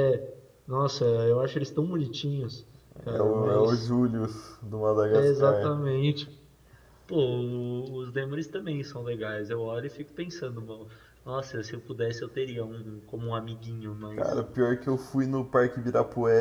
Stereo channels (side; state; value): both; identical; correlation 1.00